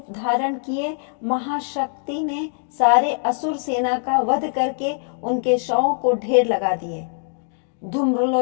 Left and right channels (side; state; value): right; silent; 64 dB below the other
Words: धारण किए महाशक्ति ने सारे असुर सेना का वध करके उनके शवों को ढेर लगा दिए।